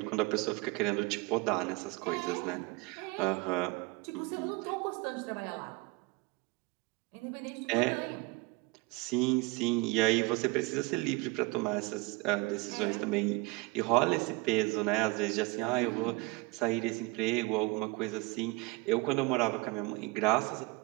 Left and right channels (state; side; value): quieter; left; 24.5 dB